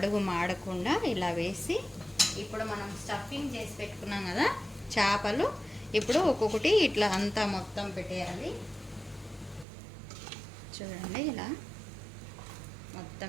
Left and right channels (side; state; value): left; drops out; at 9.7 s